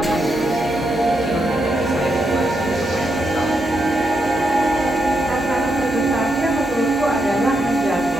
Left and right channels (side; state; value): both; normal; correlation 0.82